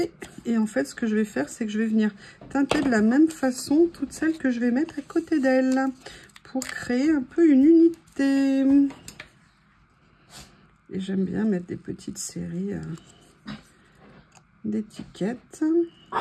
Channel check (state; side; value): identical; both; correlation 1.00